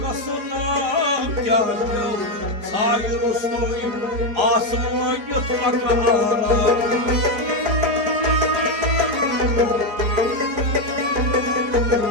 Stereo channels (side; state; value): left; late; 4.8 ms